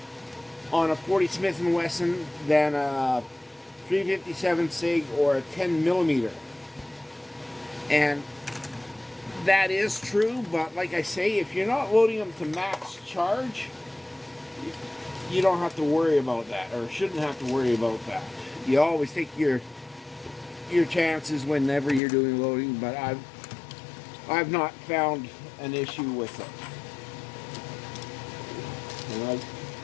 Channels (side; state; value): right; drops out; at 22.0 s